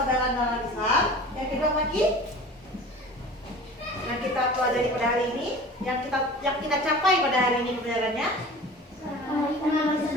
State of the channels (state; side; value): normal; both; correlation 0.40